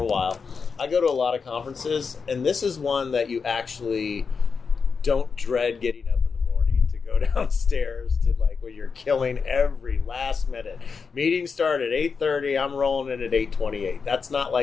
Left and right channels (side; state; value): right; quieter; 5.4 dB